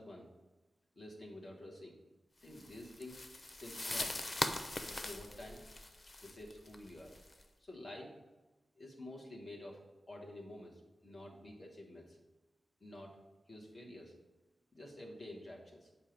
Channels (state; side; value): normal; both; correlation 0.94